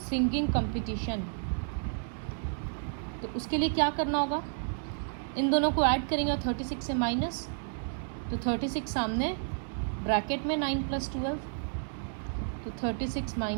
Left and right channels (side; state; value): left; silent; digital silence